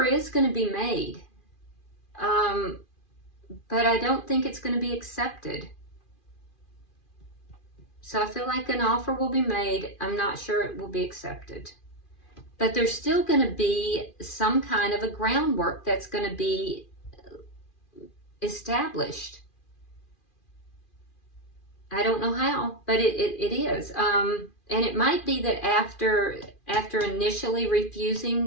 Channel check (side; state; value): right; late; 2.4 ms